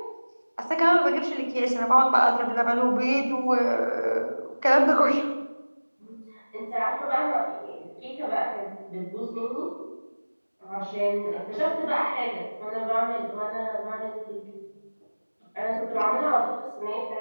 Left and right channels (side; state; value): both; inverted; correlation -1.00